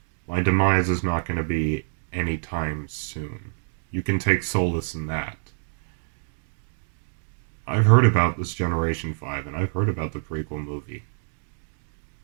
my demise is not going to be anytime soon. You can take solace in that. I've heard about this Generation 5, and I've heard about the prequel movie.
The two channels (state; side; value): silent; left; digital silence